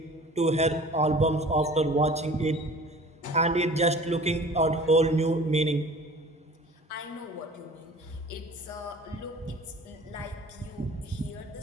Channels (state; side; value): normal; both; correlation 0.45